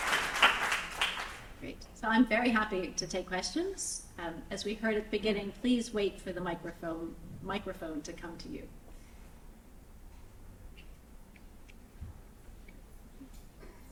So I'm very happy to take questions. As we heard at the beginning, please wait for the microphone to come to you.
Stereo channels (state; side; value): identical; both; correlation 1.00